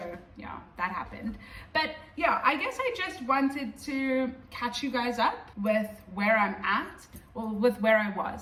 yeah, that happened. But yeah, I guess I just wanted to catch you guys up with where I'm at, or with where I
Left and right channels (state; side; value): identical; both; correlation 1.00